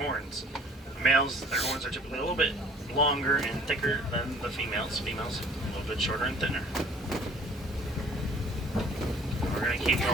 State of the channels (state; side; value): normal; both; correlation 0.52